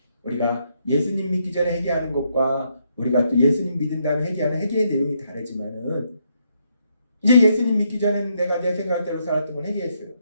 우리가 예수님 믿기 전에 회개하는 것과 우리가 또 예수님 믿은 다음에 회개하는 회개의 내용이 다르지만은 이제 예수님 믿기 전에는 내가 내 생각대로 살았던 걸 회개했어요.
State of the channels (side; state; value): both; inverted; correlation -0.76